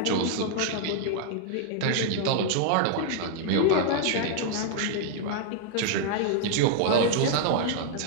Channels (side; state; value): both; different; correlation -0.01